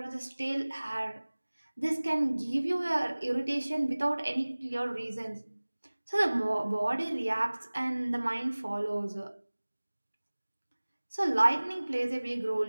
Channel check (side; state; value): both; inverted; correlation -1.00